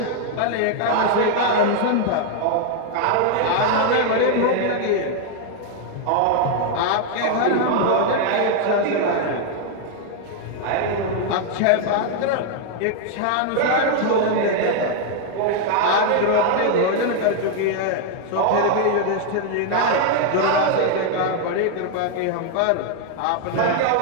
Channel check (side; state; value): both; different; correlation 0.00